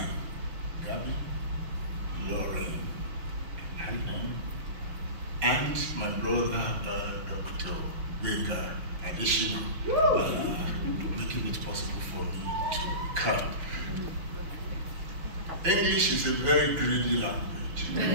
Gabby, Lauren, and my brother, Dr. Baker Additional, making it possible for me to come. English is a very greedy language. I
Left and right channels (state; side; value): late; left; 6.5 ms